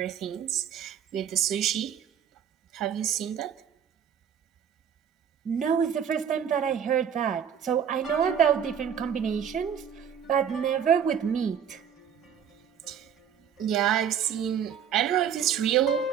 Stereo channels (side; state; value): left; quieter; 8.3 dB